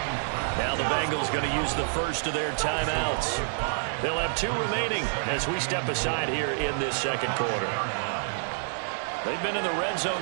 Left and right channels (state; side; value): silent; left; digital silence